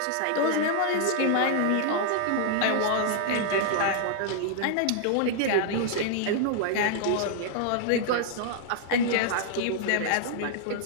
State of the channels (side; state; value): both; different; correlation -0.01